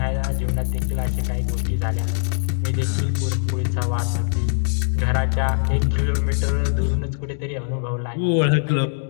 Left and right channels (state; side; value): silent; right; digital silence